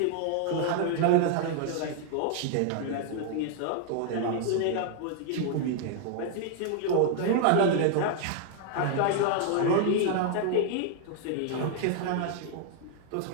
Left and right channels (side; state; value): both; different; correlation 0.00